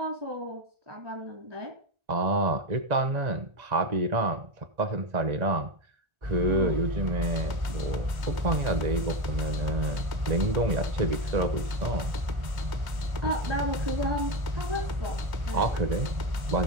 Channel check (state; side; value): late; left; 1.1 ms